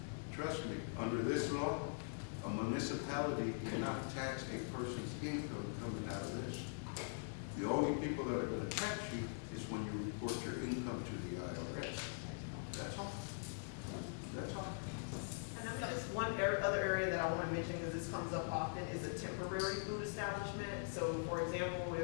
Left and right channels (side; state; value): right; silent; digital silence